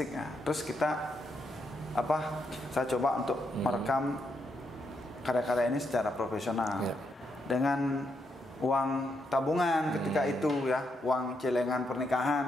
ya. Terus kita saya coba untuk merekam karya-karya ini secara profesional dengan uang tabungan ketika itu ya, uang celengan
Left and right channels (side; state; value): both; normal; correlation 0.80